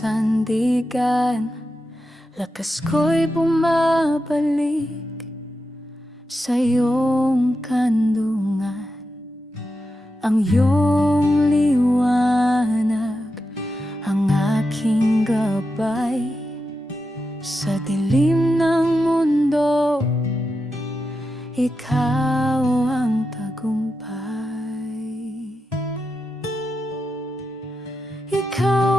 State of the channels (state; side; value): normal; both; correlation 0.88